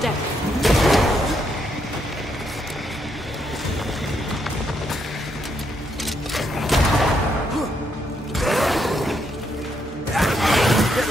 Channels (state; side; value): normal; both; correlation 0.77